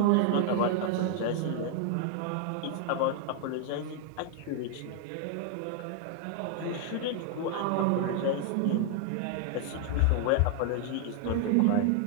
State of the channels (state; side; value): different; both; correlation 0.00